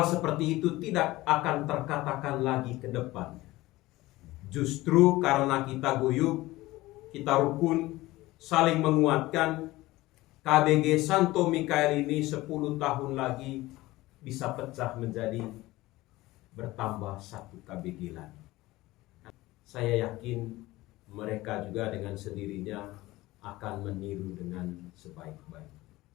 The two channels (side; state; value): right; quieter; 18.6 dB